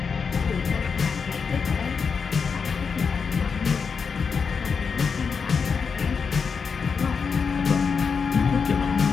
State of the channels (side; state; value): right; quieter; 5.7 dB